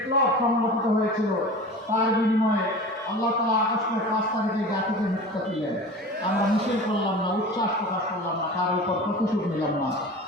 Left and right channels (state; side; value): normal; both; correlation 0.36